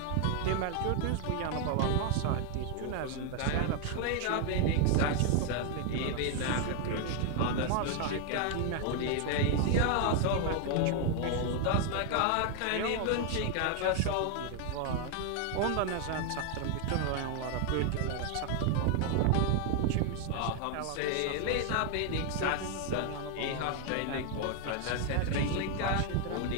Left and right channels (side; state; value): both; different; correlation 0.00